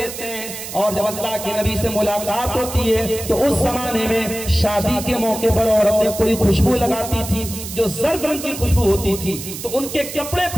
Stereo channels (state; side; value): noise; right; hiss, 9 dB below the sound